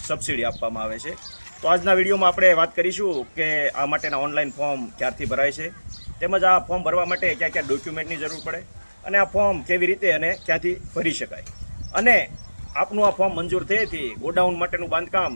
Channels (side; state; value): both; inverted; correlation -1.00